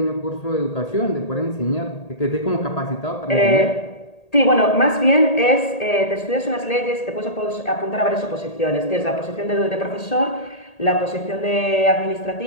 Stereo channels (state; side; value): late; right; 1.8 ms